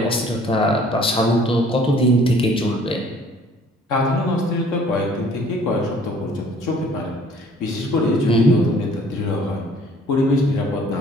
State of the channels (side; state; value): both; normal; correlation 0.55